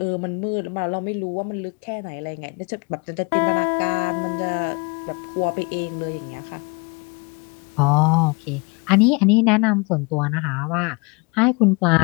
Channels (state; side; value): quieter; right; 30.0 dB